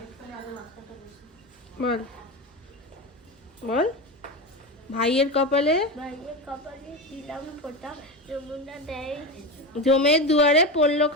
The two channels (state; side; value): normal; both; correlation 0.21